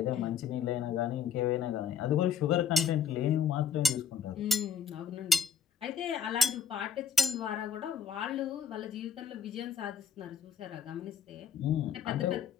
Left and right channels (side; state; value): right; quieter; 7.0 dB